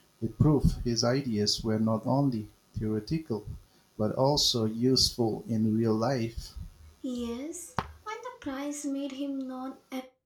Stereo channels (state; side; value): identical; both; correlation 1.00